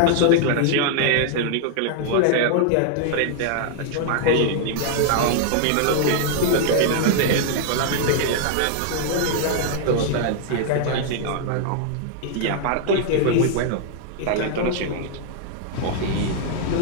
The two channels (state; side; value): different; both; correlation 0.00